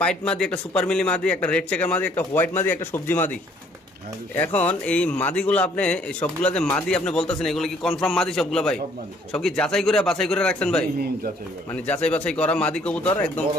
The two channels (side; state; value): both; normal; correlation 0.61